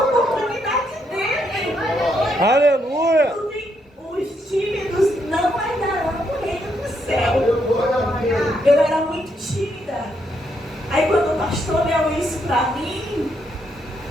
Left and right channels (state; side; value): normal; both; correlation 0.76